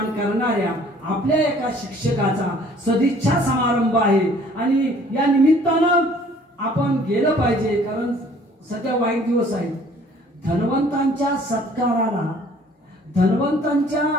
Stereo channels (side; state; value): both; normal; correlation 0.55